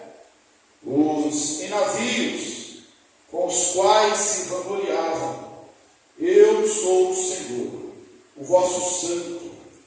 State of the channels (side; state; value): both; identical; correlation 1.00